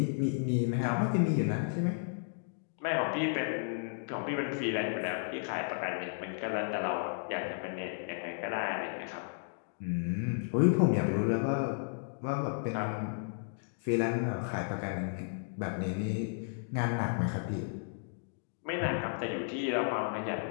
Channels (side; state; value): right; silent; digital silence